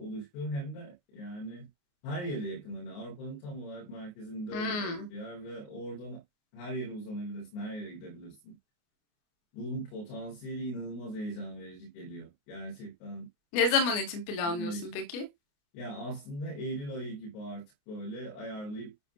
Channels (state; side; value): late; right; 28 ms